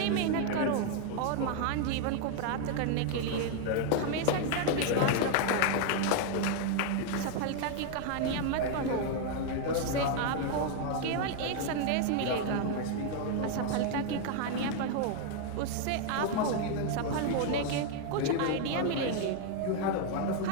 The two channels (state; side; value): different; both; correlation 0.00